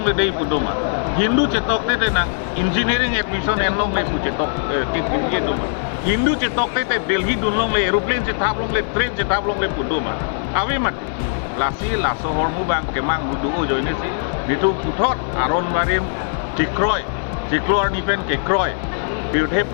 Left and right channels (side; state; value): right; silent; 55 dB below the other